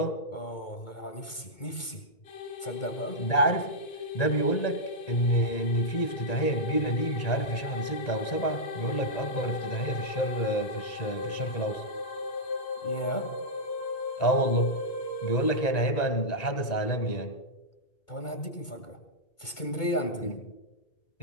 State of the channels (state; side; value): late; right; 2.2 ms